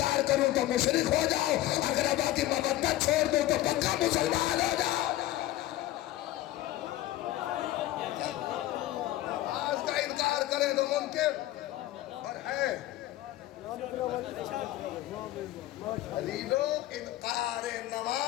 کروں تو مشرک ہو جاؤ، اقربا کی مودت چھوڑ دوں تو پکا مسلمان ہو جاؤ۔ کرے تو منکر اور ہے علیلو، انکار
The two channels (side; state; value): right; quieter; 15.0 dB